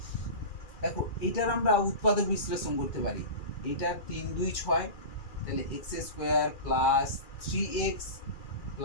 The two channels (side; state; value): right; late; 2.4 ms